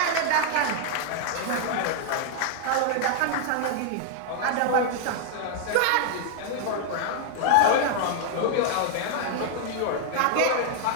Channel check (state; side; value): different; both; correlation 0.00